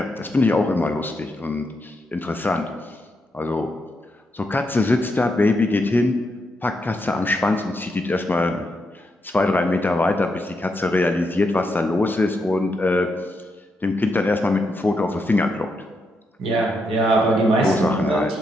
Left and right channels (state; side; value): normal; both; correlation 0.82